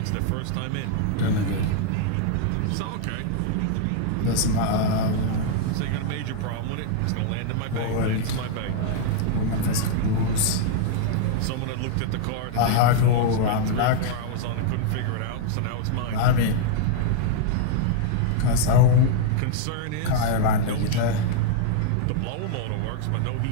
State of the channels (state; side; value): different; both; correlation -0.01